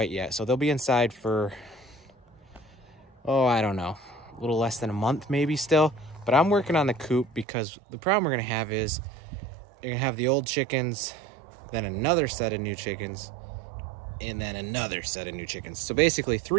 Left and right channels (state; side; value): drops out; left; at 7.5 s